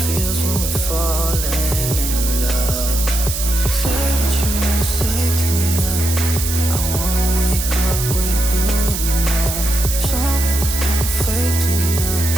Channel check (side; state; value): right; noise; hiss, 4 dB below the sound